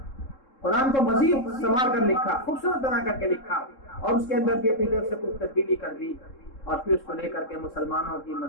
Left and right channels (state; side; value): late; right; 3.7 ms